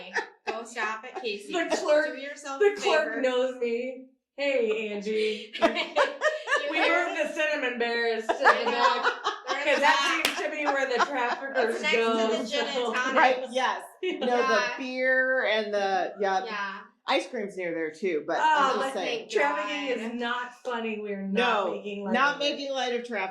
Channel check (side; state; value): both; identical; correlation 1.00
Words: go shop at Casey's. The clerk- Do yourself The a clerk favor. knows me. Hey, Angie. You We hear? moved the cinnamon bears to I the know. back. They're in Because the that back. seems to be where the traffickers It's next go. to the gin and tonic. Right, yes. The Yeah. beer and the, Yeah. ice cream's near there too, but Oh, I'm but just saying. thank Trafficking is not funny. We're No, not making light not of it. making light of